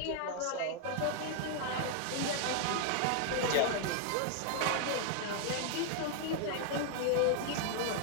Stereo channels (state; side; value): different; both; correlation 0.00